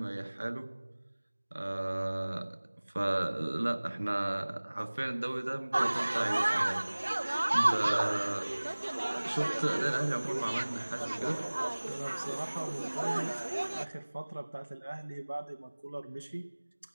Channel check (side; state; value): both; inverted; correlation -1.00